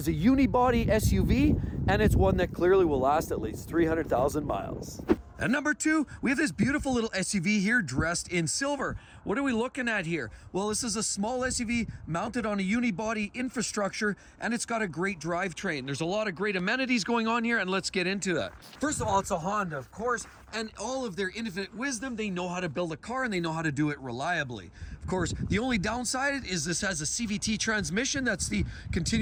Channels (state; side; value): identical; both; correlation 1.00